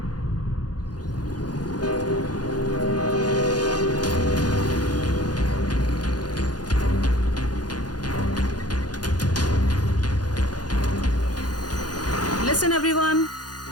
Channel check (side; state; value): right; late; 0.69 ms